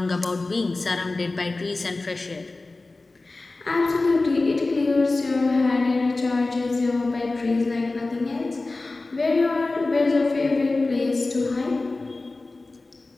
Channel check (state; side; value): quieter; right; 3.3 dB